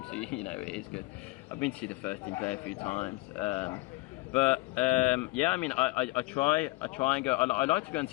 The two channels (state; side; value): quieter; right; 22.0 dB